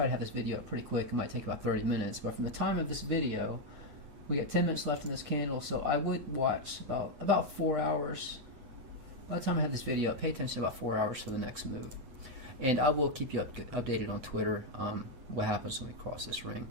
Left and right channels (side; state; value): left; late; 8.2 ms